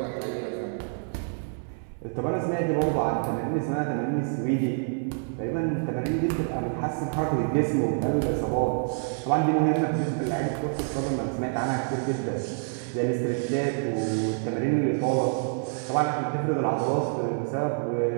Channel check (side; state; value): left; silent; 60 dB below the other